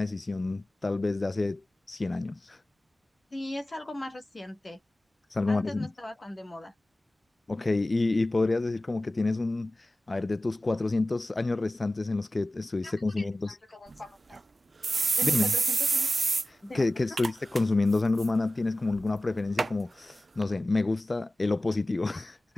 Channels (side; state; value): both; normal; correlation 0.96